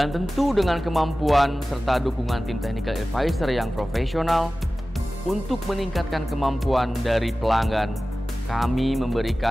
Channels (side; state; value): both; normal; correlation 0.96